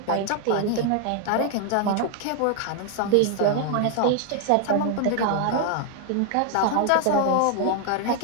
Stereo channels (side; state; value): both; different; correlation 0.00